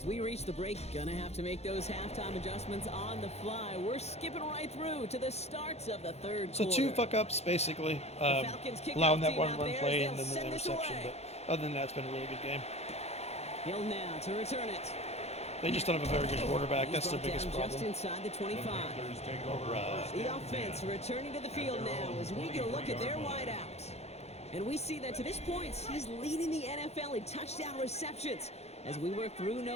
we reach the break. Gonna have to make those halftime adjustments on the fly. We're skipping right through to the starts of the 3rd So quarter. 2 fuck-ups, basically. Falcons kick Allowing off that team one out run there play as and they'll then the send this interception. away. But other than that, it's been a really good game. Hill now to return it. They just don't have a very good quarterback. That's their He's brought biggest down just problem. inside the 25. Panthers take over first The and offense 10. returning to the field now as we get a look at their wideouts. And we see that to this point, he's leading the NFL in touchdown receptions as we work through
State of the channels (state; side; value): late; right; 0.31 ms